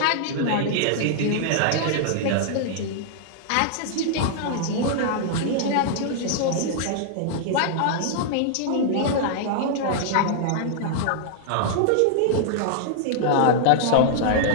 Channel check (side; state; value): both; different; correlation -0.01